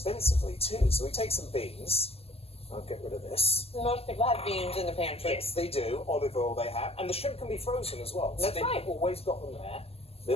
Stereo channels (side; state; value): right; late; 0.29 ms